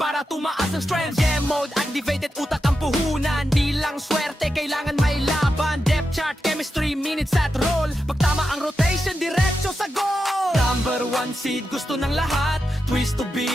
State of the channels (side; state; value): both; normal; correlation 0.88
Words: tumaas ang strength? Game mode, activated, utak ang puhunan. Di lang swerte, kailangan may laban. Depth chart, chemistry, minutes at roll. Pag tama ang rotation, diretso sa goal. Number one seed, gusto ng lahat. Twist to